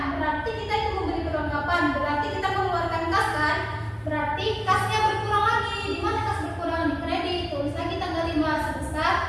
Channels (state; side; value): identical; both; correlation 1.00